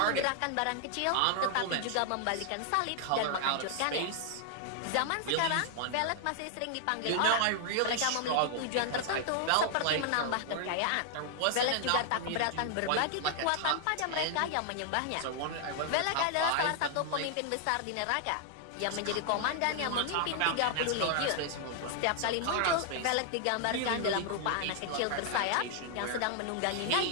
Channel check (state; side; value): different; both; correlation 0.00